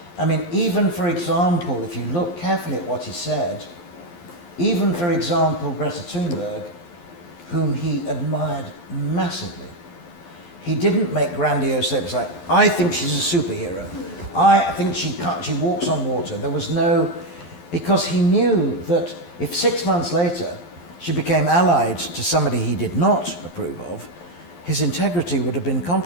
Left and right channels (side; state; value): right; late; 12 ms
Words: I mean, even for example, if you look carefully at what he said, even for example, Greta Thunberg, whom he admired massively, he didn't make grandiose statements like, I think she's a superhero. I think she walks on water. There was no, because he knew that if 6 months later she became allied to somebody he did not approve of, his integrity would have been